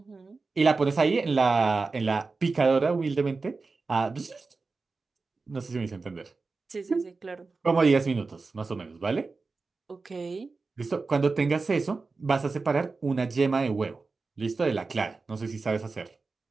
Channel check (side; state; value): left; quieter; 4.1 dB